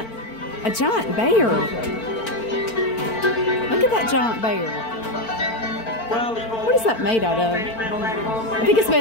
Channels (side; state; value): right; late; 4.4 ms